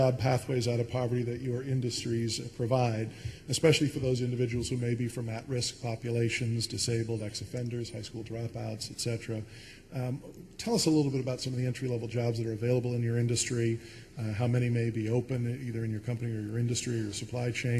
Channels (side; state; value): both; identical; correlation 1.00